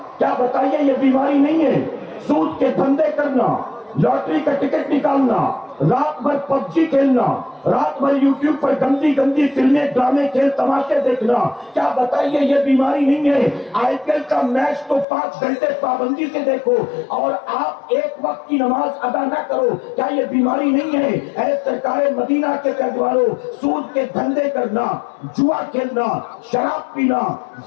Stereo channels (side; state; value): right; drops out; at 15.1 s